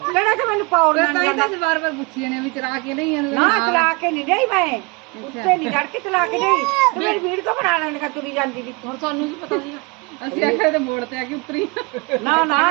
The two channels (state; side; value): quieter; left; 28.1 dB